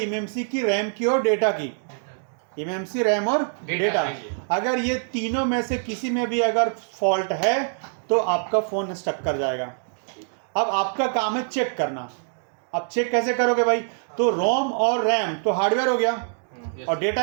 एमएमसी की, रैम की और डेटा की। एमएमसी, रैम और डेटा। अगर ये तीनों में से किसी में भी अगर फॉल्ट है तो आपका फोन स्टक कर जाएगा। अब आपका काम है चेक करना। अब चेक कैसे करोगे भाई? तो रोम और रैम तो हार्डवेयर हो गया और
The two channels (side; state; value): left; silent; 62 dB below the other